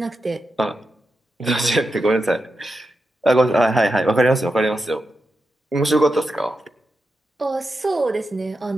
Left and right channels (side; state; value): both; normal; correlation 0.88